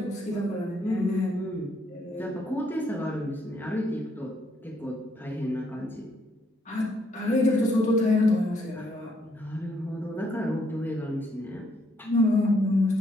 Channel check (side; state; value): both; normal; correlation 0.71